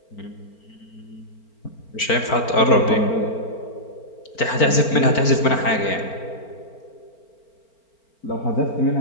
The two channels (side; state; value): right; late; 4.4 ms